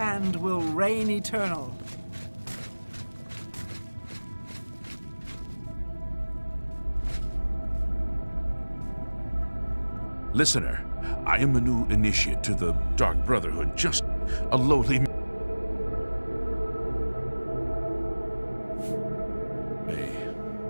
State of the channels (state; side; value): inverted; both; correlation -1.00